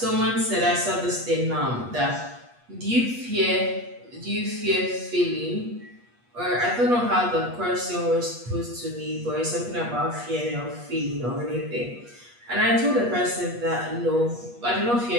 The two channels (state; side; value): late; left; 8.3 ms